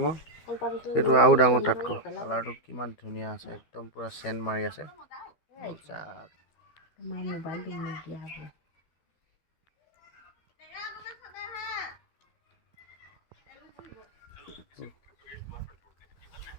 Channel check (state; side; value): late; right; 13 ms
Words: এইটো আৰু ডাঙৰ তাতকৈ কালাৰটো কিমান ধুনীয়া আছে একদম পুৰা চেন মাৰি আছে